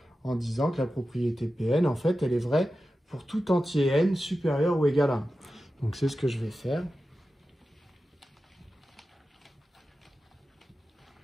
en disant que la propriété Pn, en fait, elle est vraie pour tout entier n supérieur ou égal à 1. Donc c'est ce que je vais faire.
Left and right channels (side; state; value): both; normal; correlation 0.93